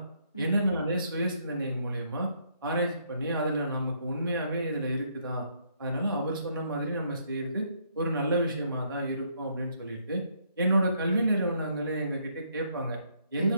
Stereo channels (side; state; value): both; inverted; correlation -0.70